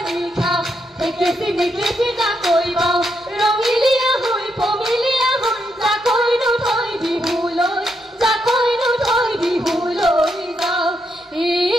খাওঁ একেচি নেকেচি জাকৈ বাওঁ ৰঙিলীয়া হৈ পমিলীয়া হৈ জাকৈনো থৈ বিহুলৈ জাকৈনো থৈ বিহুলৈ যাওঁ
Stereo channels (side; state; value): both; normal; correlation 0.80